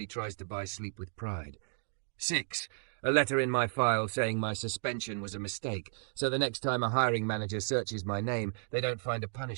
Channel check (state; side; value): silent; left; digital silence